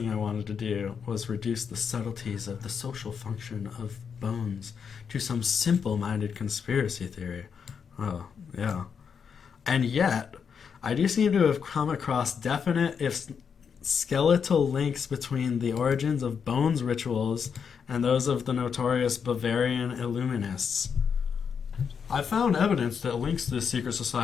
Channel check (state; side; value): quieter; right; 6.7 dB